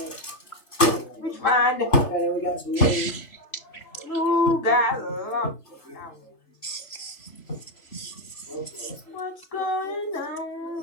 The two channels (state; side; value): late; right; 3.0 ms